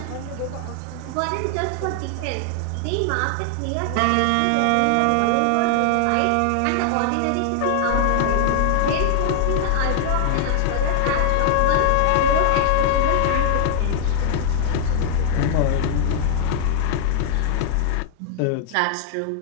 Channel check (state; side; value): different; both; correlation 0.00